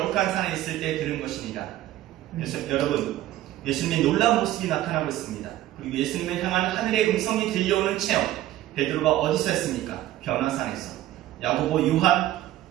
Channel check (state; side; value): quieter; left; 14.2 dB